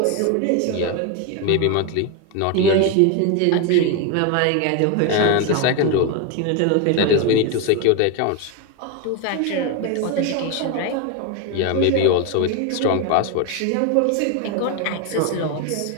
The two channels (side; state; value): both; different; correlation 0.02